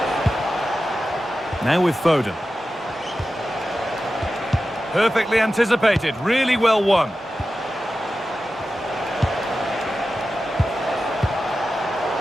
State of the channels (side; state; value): both; normal; correlation 0.93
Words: Now with Foden. Perfectly anticipated, really well won.